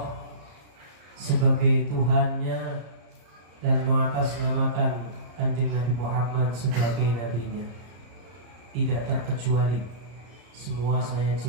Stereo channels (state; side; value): late; left; 34 ms